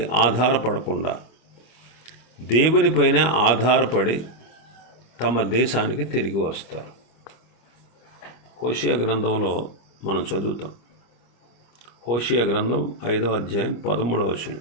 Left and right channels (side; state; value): right; late; 25 ms